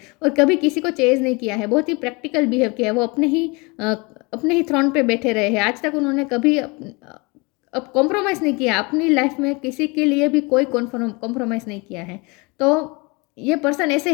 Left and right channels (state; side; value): quieter; right; 27.5 dB